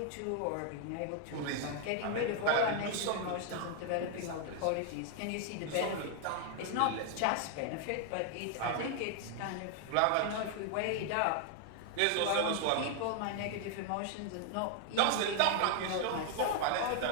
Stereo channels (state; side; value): different; both; correlation 0.00